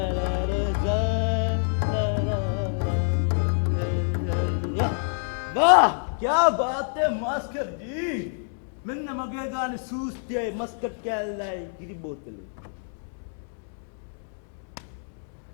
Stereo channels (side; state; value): right; silent; 60 dB below the other